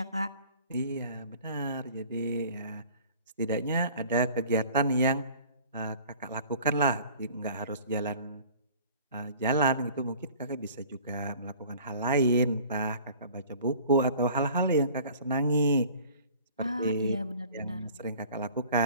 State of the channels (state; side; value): inverted; both; correlation -0.48